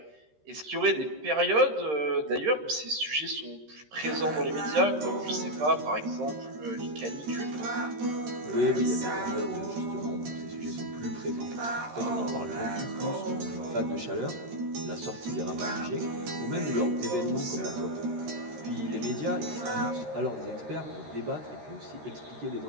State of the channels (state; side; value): late; left; 13 ms